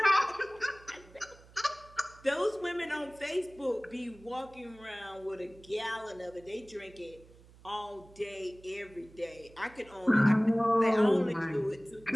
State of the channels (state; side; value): noise; right; hum, 24 dB below the sound